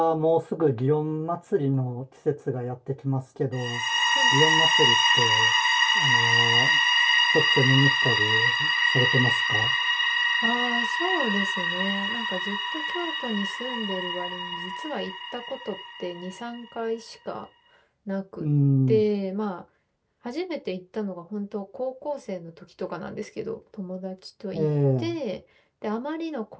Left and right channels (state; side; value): identical; both; correlation 1.00